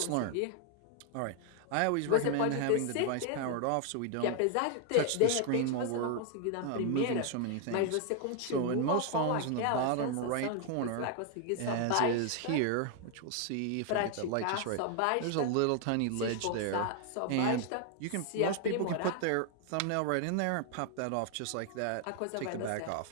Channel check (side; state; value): both; different; correlation 0.00